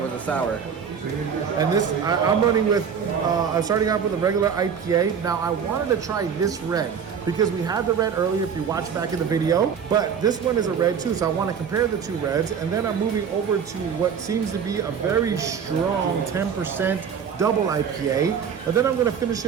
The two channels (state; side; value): quieter; left; 7.1 dB